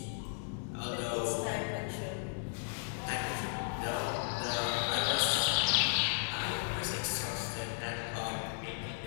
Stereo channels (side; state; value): right; silent; 54 dB below the other